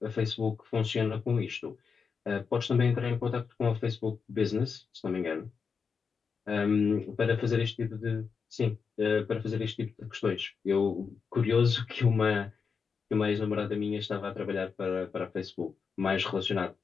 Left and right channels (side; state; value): right; quieter; 5.7 dB